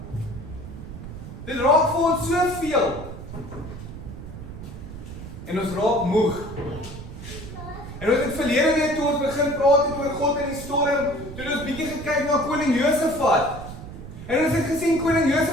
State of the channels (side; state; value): right; noise; rumble, 12 dB below the sound